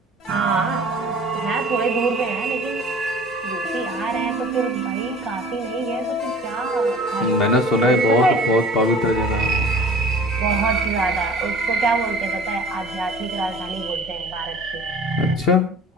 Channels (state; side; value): normal; both; correlation 0.45